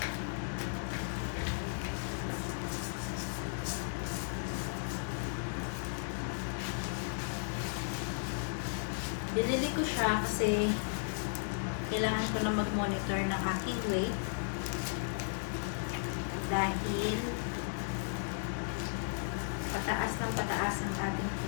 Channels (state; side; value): silent; right; digital silence